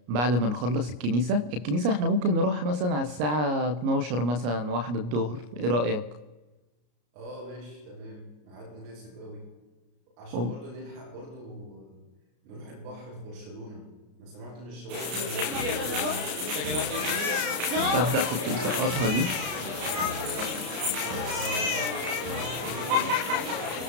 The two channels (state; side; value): late; left; 33 ms